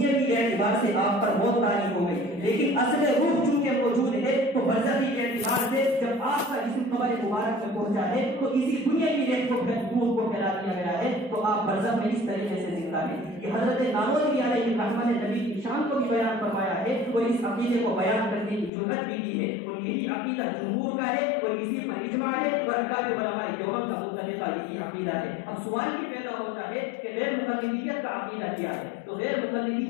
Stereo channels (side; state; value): right; drops out; at 18.7 s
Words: کی اعتبار سے آپ پر موت طاری ہو گئی، لیکن اصل روح چونکہ موجود ہے تو برزخی کے اعتبار سے جب آپ کا جسم قبر مبارک میں پہنچا ہے تو اسی دنیا کی ریت کو روح کو پھیلا دیا گیا ہے، تو آپ برزخ میں اس طریقے سے زندہ ہیں۔ یہ حضرت نانوتوی علیہ رحمت نے نبی کی شان کو بھی بیان فرمایا ہے اور اس عقیدے کو بیان کرنے کی جرأت بھی دی ہے، اور یہی عقیدہ جمہور کا ہے اور اسی پر اجماع ہے اور ارکان علماء دیوبند کا مختلفہ یہی عقیدہ ہے۔ اب سوال یہ پیدا ہوتا ہے کہ غیر مقلدیت کا عقیدہ کیا ہے؟ تو غیر